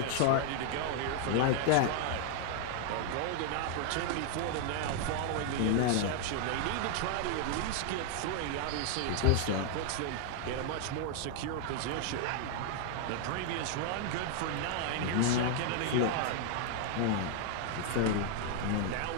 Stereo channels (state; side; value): different; both; correlation 0.00